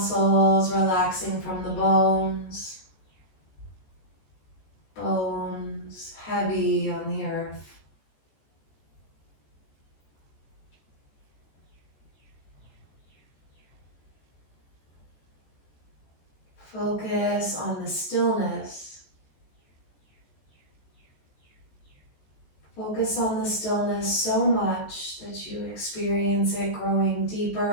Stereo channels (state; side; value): late; right; 14 ms